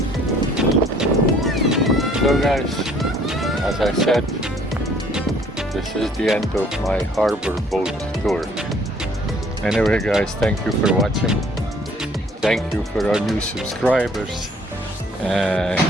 So guys, as I said, this is the end of my harbor boat tour. Anyway guys, thank you for watching. Thank you for our new subscribers.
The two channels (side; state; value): both; normal; correlation 0.58